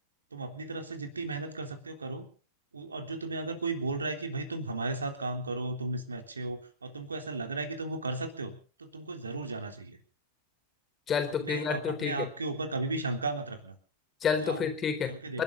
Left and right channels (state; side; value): normal; both; correlation -0.14